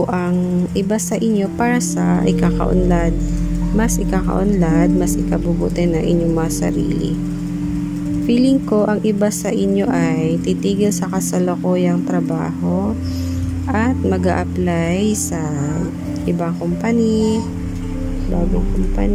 ang iba sa inyo para sa ikakaunlad, mas ikabubuti ng inyong mga sarili. Feeling ko ang iba sa inyo ay titigil sa kasalukuyang trabaho at mag-a-apply sa ibang company, bagong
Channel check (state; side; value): identical; both; correlation 1.00